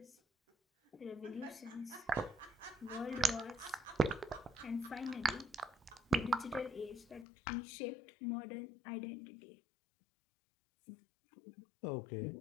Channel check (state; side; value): drops out; right; at 7.2 s